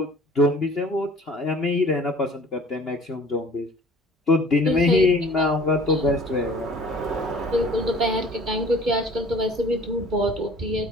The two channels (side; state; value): both; normal; correlation 0.49